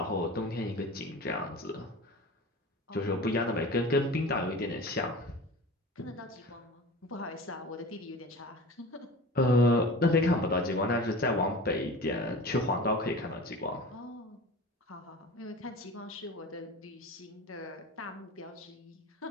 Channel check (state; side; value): normal; both; correlation 0.35